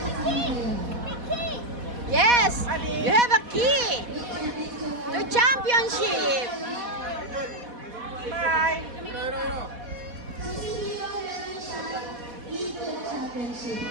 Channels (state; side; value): late; left; 4.1 ms